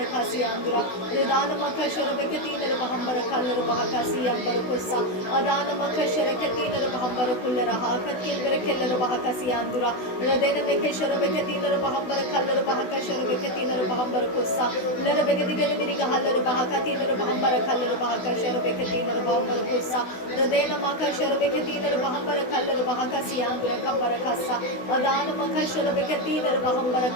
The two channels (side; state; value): right; late; 16 ms